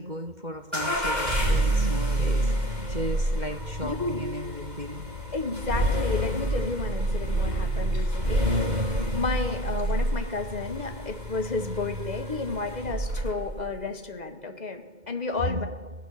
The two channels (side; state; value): left; late; 2.0 ms